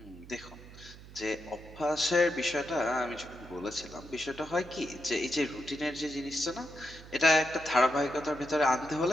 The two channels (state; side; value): noise; right; hum, 17 dB below the sound